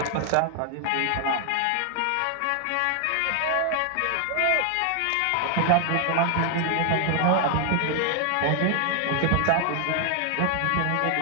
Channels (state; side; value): different; both; correlation 0.00